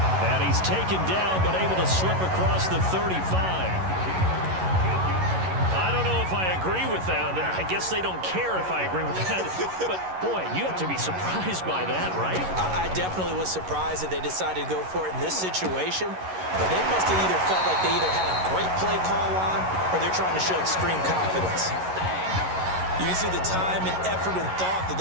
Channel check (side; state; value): left; late; 11 ms